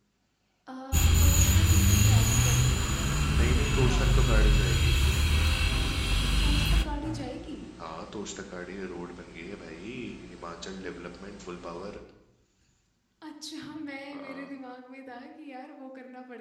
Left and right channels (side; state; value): both; identical; correlation 1.00